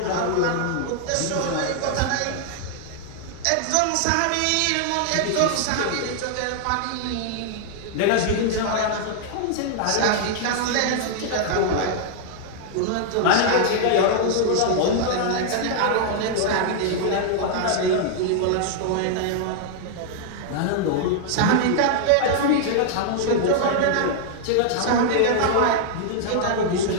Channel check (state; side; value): different; both; correlation -0.01